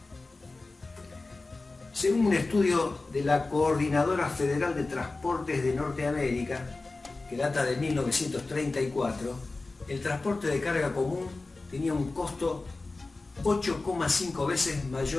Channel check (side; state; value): right; quieter; 3.4 dB